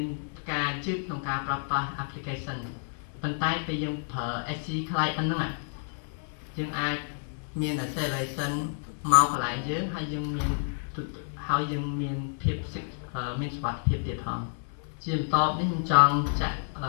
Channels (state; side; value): silent; right; digital silence